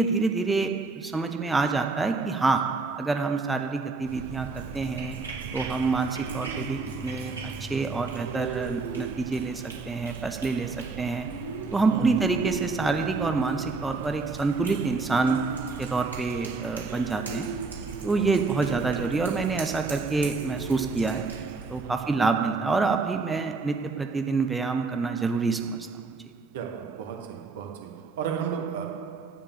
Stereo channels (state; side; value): quieter; left; 4.0 dB